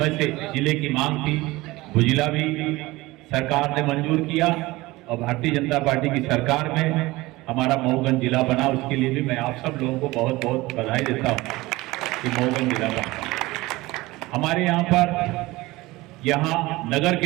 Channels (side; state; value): left; quieter; 20.1 dB